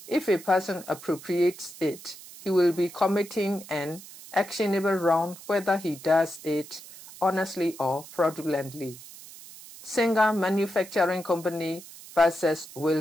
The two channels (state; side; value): noise; right; hiss, 17 dB below the sound